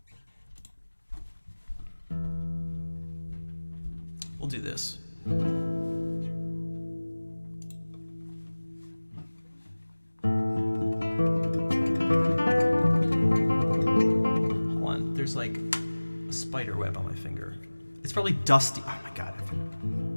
We'll do this. Hold on, there's like a spider web on my finger. It's probably dusty. Oh my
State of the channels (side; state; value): both; inverted; correlation -1.00